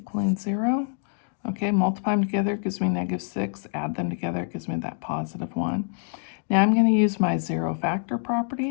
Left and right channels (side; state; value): right; silent; 58 dB below the other